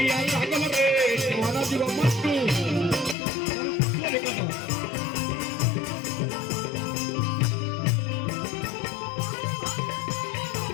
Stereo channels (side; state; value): right; drops out; at 3.2 s